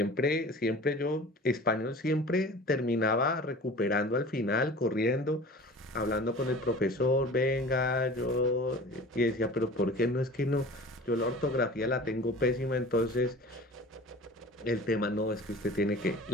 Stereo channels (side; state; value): both; normal; correlation 0.40